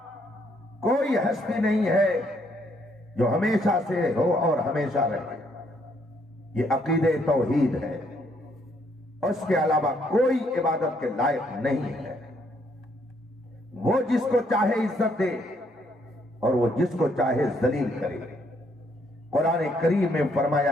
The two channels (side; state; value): both; normal; correlation 0.70